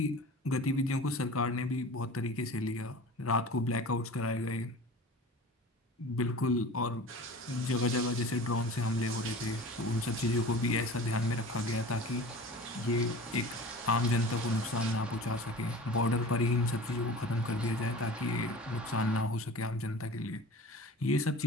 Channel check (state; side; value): normal; both; correlation 0.38